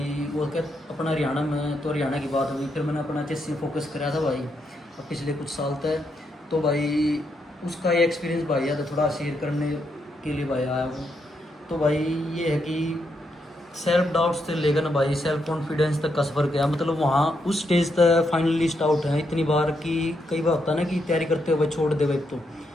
वो क्या अपना हरियाणा में तो हरियाणा की बात हुई, फिर मैंने अपना एचएससी फोकस कराया था भाई अब पिछले कुछ साल तक। तो भाई उसका ये एक्सपीरियंस भाई है तो थोड़ा शेयर करने के लिए भाई आया हूँ। तो भाई ये है कि सेल्फ डाउट्स से लेकर ना भाई सेल्फ कॉन्फिडेंस तक का सफ़र किया, मतलब वहाँ उस स्टेज तक फाइनलिस्ट आउट है इतनी बार कि कई बार होता है ना कि तैयारी करते हुए छोड़ दे भाई, तो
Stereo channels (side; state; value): both; normal; correlation 0.80